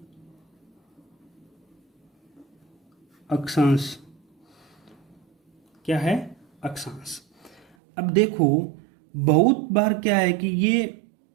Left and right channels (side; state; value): left; drops out; at 7.7 s